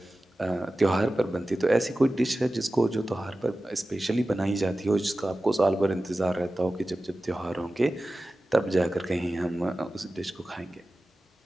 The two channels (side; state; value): both; normal; correlation 0.95